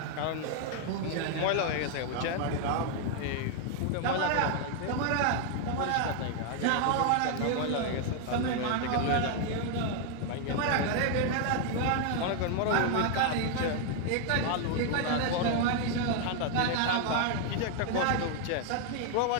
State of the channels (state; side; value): different; both; correlation 0.00